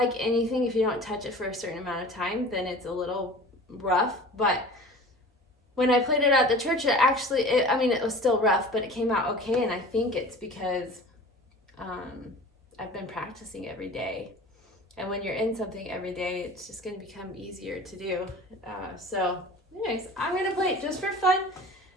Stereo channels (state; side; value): normal; both; correlation 0.41